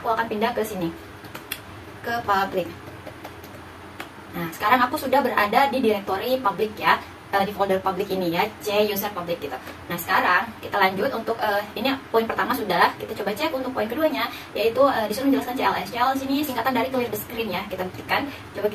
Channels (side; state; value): both; identical; correlation 1.00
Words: aku akan pindah ke sini, ke public. Nah, sekarang aku sudah berada di direktori public ya, di folder public ini ya, C user public gitu. Nah, sekarang kita lanjut untuk ini poin pertama sudah, kita coba cek untuk poin keduanya, yaitu disuruh menjelaskan CLS. CLS ini singkatan dari clear the screen ya, kita buktikan. Coba